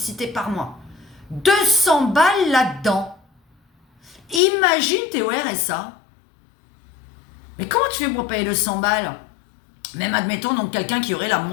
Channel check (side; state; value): right; drops out; at 4.4 s